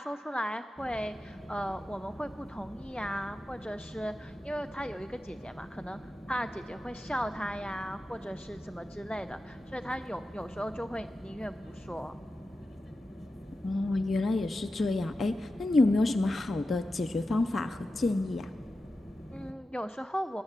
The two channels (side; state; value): both; normal; correlation 0.92